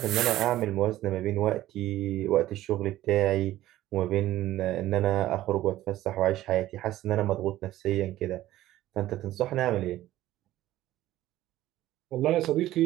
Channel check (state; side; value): quieter; left; 14.7 dB